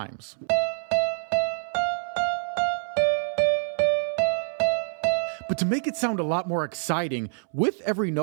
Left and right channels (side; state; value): left; silent; 61 dB below the other